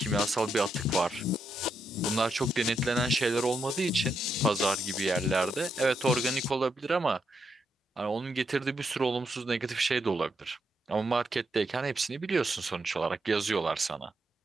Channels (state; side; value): normal; both; correlation 0.81